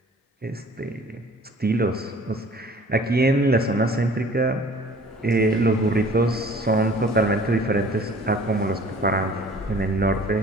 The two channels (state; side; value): normal; both; correlation 0.50